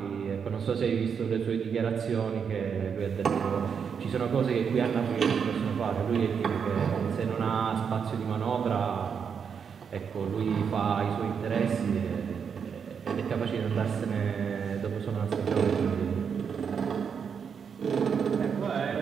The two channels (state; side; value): quieter; left; 6.8 dB